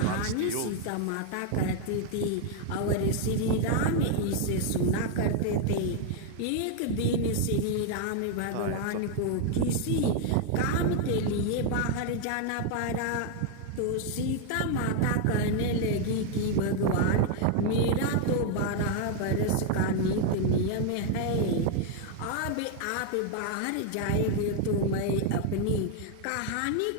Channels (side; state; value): both; different; correlation 0.00